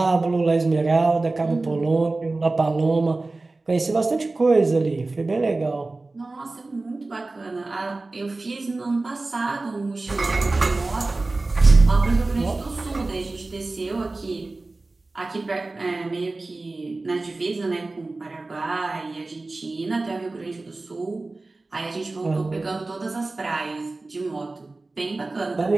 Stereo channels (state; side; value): quieter; left; 3.3 dB